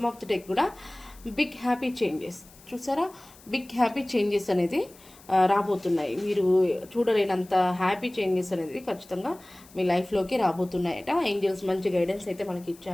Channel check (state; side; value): noise; left; hiss, 24 dB below the sound